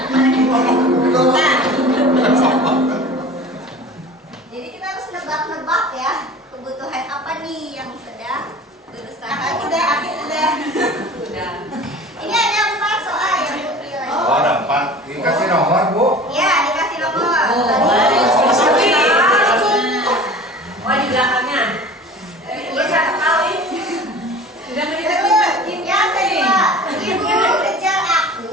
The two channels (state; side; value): normal; both; correlation 0.40